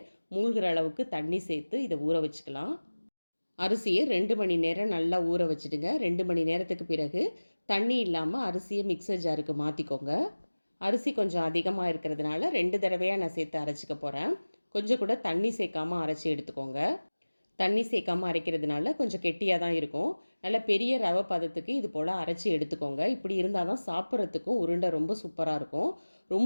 மூழ்கிற அளவுக்கு தண்ணி சேர்த்து இதை ஊற வச்சுக்கலாம். அரிசியை 2 மணி நேரம் நல்லா ஊற வச்சுடுங்க. 2 மணி நேரத்துக்கு பிறகு தண்ணி இல்லாமல் அரிசியை மிக்சர் ஜாருக்கு மாற்றிக்கோங்க. அரிசி கொஞ்சம் அதிகமாக இருக்கிறதுனால 2 தடவையாக நான் சேர்த்து அரைச்சிக்க போகிறேன். கொஞ்சம் கூட தண்ணி சேர்க்காமல் அரைச்சி எடுத்துக்கோங்க. தண்ணி சேர்க்காமல் அரைக்கிறதுனால கொஞ்சம் கெட்டியாக தான் இருக்கும். நல்ல பெரிய ரவை பதத்துக்கு இது போல் அரைச்சி எடுத்துக்கோங்க. இப்படி இருந்தால் தான் சாப்பிட்றதுக்கும் உருண்டை ரொம்ப சூப்பராக இருக்கும்.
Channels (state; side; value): inverted; both; correlation -1.00